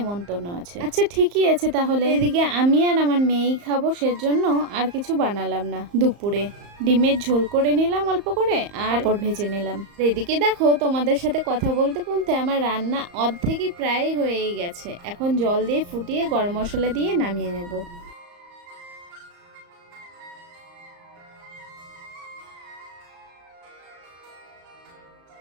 আছে। আচ্ছা ঠিকই আছে তাহলে। এদিকে আমি আর আমার মেয়েই খাবো, সেজন্য আর কিছু বানালাম না। দুপুরে ডিমের ঝোল করে নিলাম অল্প করে, আর পাঁপড় ভেজে নিলাম। এদিকে দেখো তোমাদের সাথে কথা বলতে বলতে আমার রান্না অর্ধেকই প্রায় হয়েই গেছে। এখন জল দিয়ে ফুটিয়ে গরম মশলা দিয়ে নামিয়ে নেব।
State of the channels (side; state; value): left; late; 34 ms